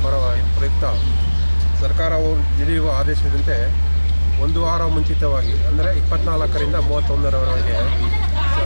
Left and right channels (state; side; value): inverted; both; correlation -1.00